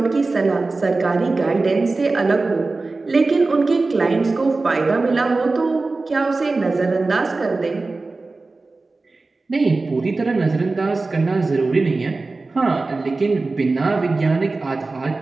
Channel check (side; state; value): left; quieter; 3.6 dB